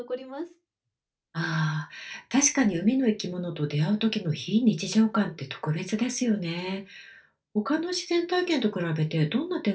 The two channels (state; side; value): identical; both; correlation 1.00